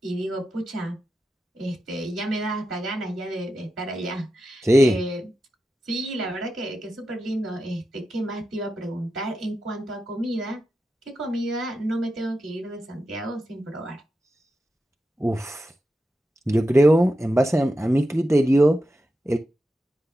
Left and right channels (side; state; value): both; normal; correlation 0.89